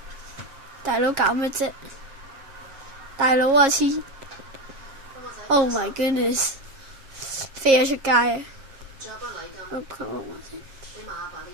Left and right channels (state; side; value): late; left; 7.4 ms